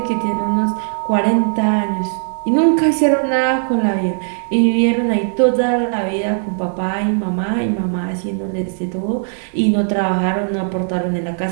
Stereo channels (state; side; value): silent; left; 60 dB below the other